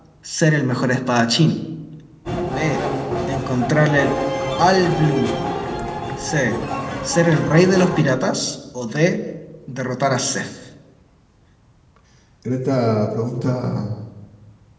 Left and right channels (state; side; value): identical; both; correlation 1.00